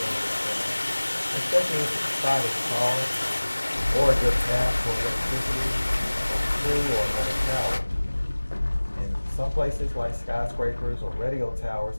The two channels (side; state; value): both; inverted; correlation -1.00